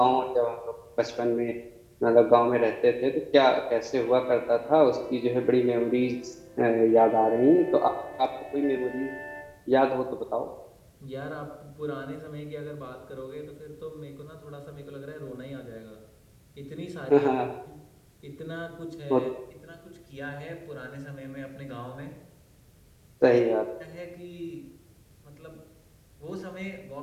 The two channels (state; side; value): identical; both; correlation 1.00